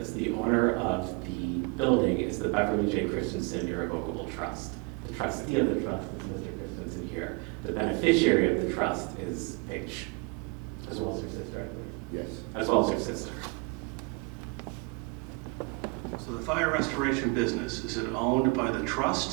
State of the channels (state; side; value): quieter; left; 30.2 dB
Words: The owner of the building is the Beverly J. Christensen Irrevocable Trust. The trustee of the trust is Mr. Christensen here. The beneficiary of the trust is Paige, as well as her sister, I believe. Yes. As well as her sister. So the fire restoration business, is it owned by the